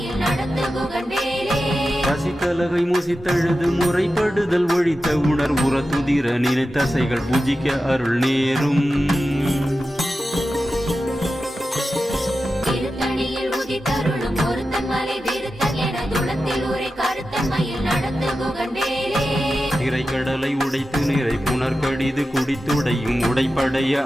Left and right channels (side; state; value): both; normal; correlation 0.92